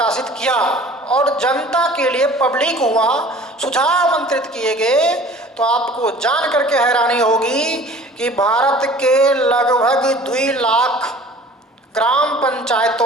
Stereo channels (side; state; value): both; normal; correlation 0.47